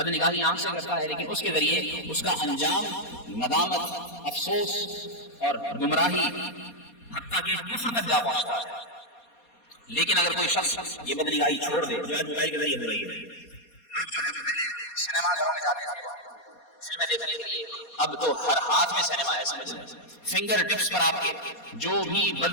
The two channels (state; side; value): late; right; 4.2 ms